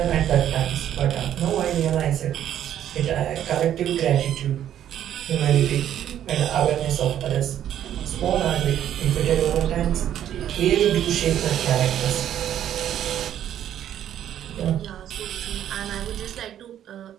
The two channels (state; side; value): quieter; left; 10.8 dB